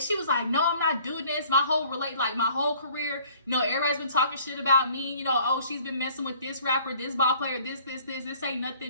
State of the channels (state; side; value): inverted; both; correlation -0.54